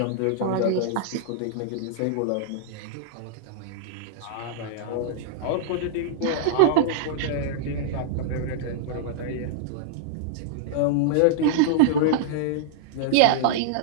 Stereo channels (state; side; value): different; both; correlation -0.02